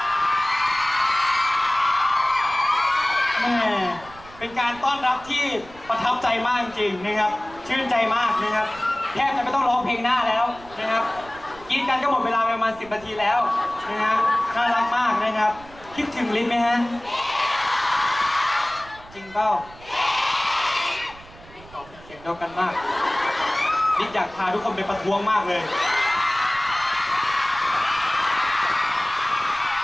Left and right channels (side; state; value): right; noise; rumble, 21 dB below the sound